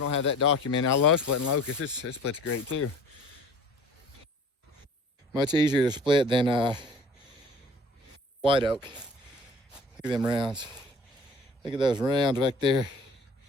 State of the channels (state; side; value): normal; both; correlation 0.47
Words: have that documented. I love splitting locust. It splits great too. Much easier to split than white oak. Look at them rounds. Look at those rounds back there.